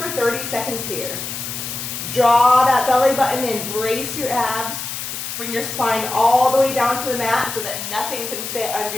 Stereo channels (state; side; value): noise; left; hiss, 6 dB below the sound